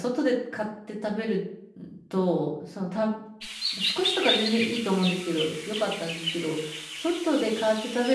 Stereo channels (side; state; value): both; identical; correlation 1.00